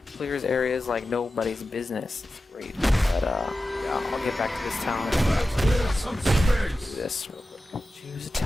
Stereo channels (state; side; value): normal; both; correlation 0.93